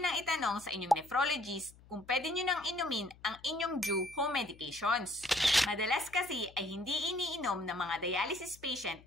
nang itanong sa inyong nephrologist kung pwede nyo nang inumin ang inyong due home medications. Madalas kasi ay hindi iniinom ng mga dialysis patient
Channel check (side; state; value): left; noise; hum, 24 dB below the sound